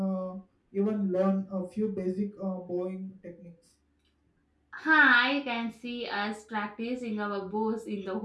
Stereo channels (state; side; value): identical; both; correlation 1.00